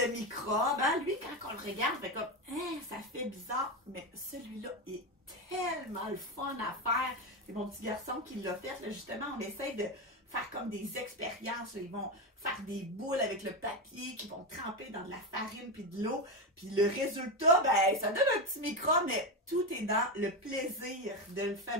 microbes, hein? Lui, quand on le regarde, fait comme, hein, ça fait bizarre, mais celui-là est tellement le fun à faire. C'est mon petit garçon qui l'a fait. Là, justement, on essaie de faire comme des expériences. Là. Ils vont faire des boules avec le papier, qui vont tremper dans de la farine puis de l'eau. Puis le résultat, ben, ça donne un petit microbe, mais tout est dans le plaisir de le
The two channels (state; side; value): normal; both; correlation 0.13